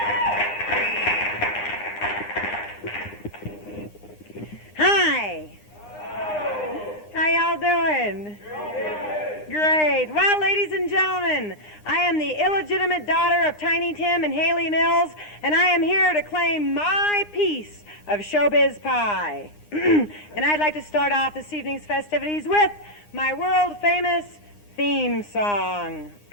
Hi. How y'all doing? Great. Well, ladies and gentlemen, I am the illegitimate daughter of Tiny Tim and Haley Mills, and I am here to claim my piece of showbiz pie. And I'd like to start off this evening's festivities with my world-famous theme song.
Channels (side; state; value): right; late; 9.8 ms